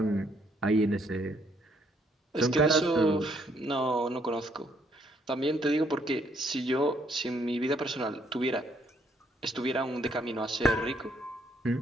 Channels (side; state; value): both; normal; correlation 0.69